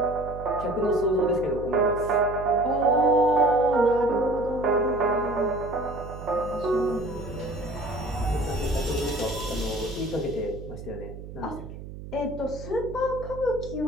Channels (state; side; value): noise; right; hum, 12 dB below the sound